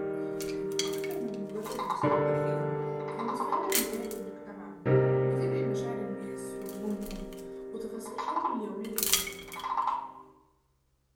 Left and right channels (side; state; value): both; identical; correlation 1.00